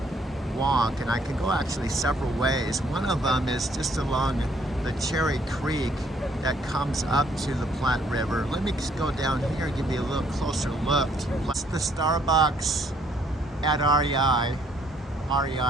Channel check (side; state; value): both; normal; correlation 0.65